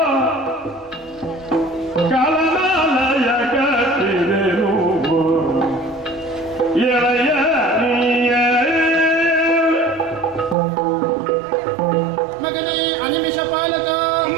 ಕಲನಾಲಯ ಕಟ್ಟಿರೆನು ಎಳೆಯ ಮಗನೇ ಅನಿಮಿಷ ಪಾಲಕ,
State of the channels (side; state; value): left; drops out; at 10.6 s